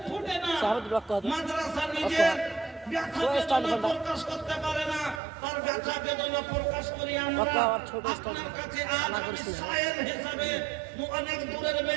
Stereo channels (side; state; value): left; drops out; at 5.2 s